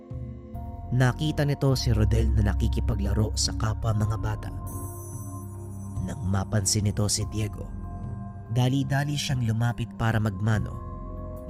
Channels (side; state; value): both; identical; correlation 1.00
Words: nakita nito si Rodel na nakikipaglaro sa kapwa mga bata. Nang mapansin nito si Diego, dali-dali siyang lumapit para magmano,